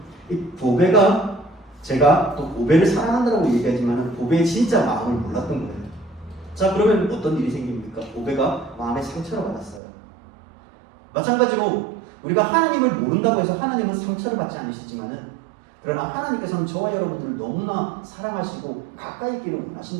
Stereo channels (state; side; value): drops out; left; at 9.8 s